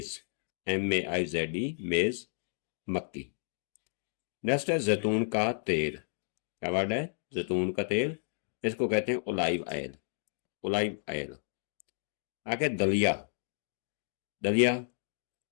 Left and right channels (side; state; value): right; silent; digital silence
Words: MEIZE, मेज, मक्की। नेक्स्ट है जैतून का तेल। क्या वर्ड है? जैतून का तेल। इसको कहते हैं ओलाइव ऑयल। ओलाइव ऑयल। आगे दलिया। दलिया